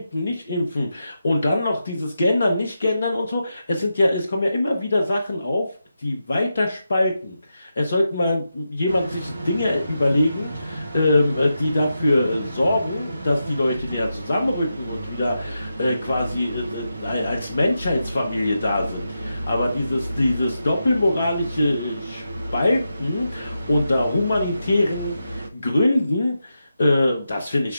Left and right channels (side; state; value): both; inverted; correlation -0.88